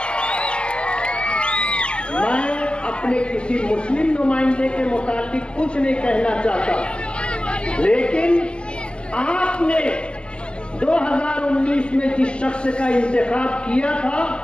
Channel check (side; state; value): right; late; 0.056 ms